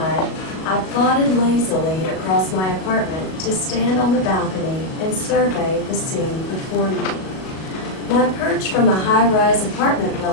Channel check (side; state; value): right; late; 37 ms